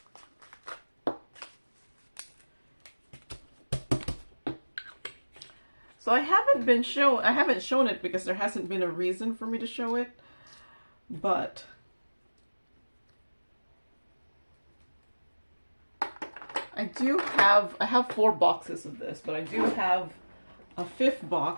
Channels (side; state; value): both; inverted; correlation -1.00